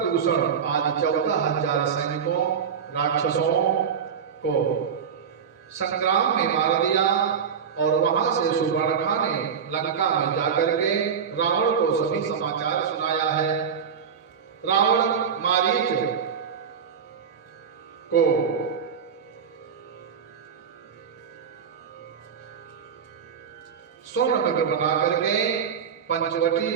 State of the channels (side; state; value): left; quieter; 7.0 dB